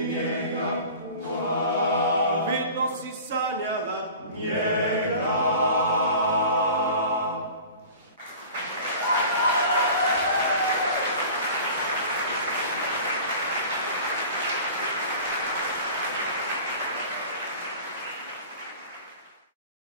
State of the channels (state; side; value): inverted; both; correlation -0.40